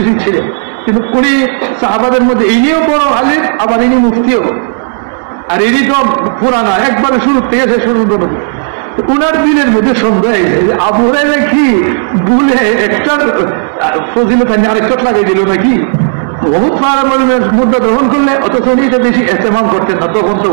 ছিলেন, কিন্তু উনি সাহাবাদের মধ্যে ইনিও বড় আলেম, আবার ইনি মুফতিও, আর ইনি তো পুরানা একবারে শুরু থেকে শেষ পর্যন্ত। উনার দিনের মধ্যে সন্দেহ হয়েছে যে আবু হুরায়রা কি ভুলে একটা ফজিলত আরেকটা লাগাই দিল নাকি, বহুত মুদ্রা গ্রহণ করলে অথচ উনি এটা বেশি ইস্তেমাল করতেন না তখন। তো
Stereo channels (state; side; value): silent; left; digital silence